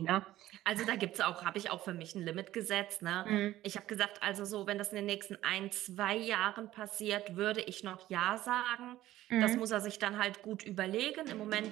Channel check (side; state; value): left; quieter; 14.8 dB